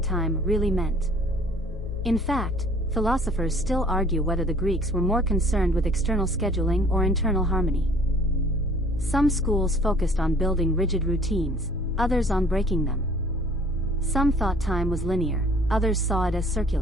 time really meant. In fact, philosophers still argue whether the Greeks were more concerned with external scheduling or internal harmony. Some schools focused on building rigid routines, others on breaking them. Some thought time was linear, others saw it as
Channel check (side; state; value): both; normal; correlation 0.54